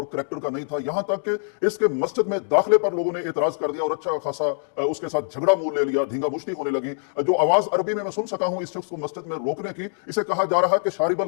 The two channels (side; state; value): right; silent; digital silence